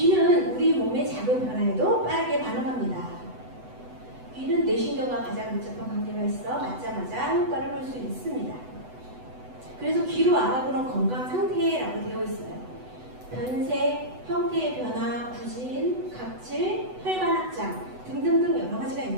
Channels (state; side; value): late; left; 8.0 ms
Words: 우리 몸의 작은 변화에도 빠르게 반응합니다. 귀는 뇌신경과 가장 밀접한 관계가 있어 맞자마자 효과를 볼 수 있습니다. 그래서 귀로 알아보는 건강 상태라고 되어 있어요. 변색, 형태의 변화, 부진, 각질, 혈관 확장 등등등 여러 가지가